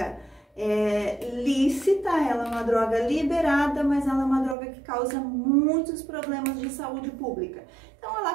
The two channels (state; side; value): drops out; left; at 4.5 s